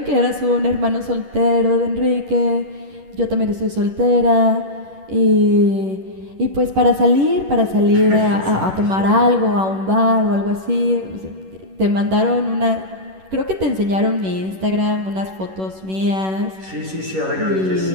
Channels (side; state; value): left; late; 11 ms